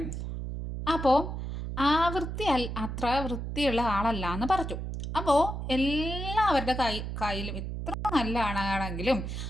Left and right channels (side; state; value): right; noise; hum, 5 dB below the sound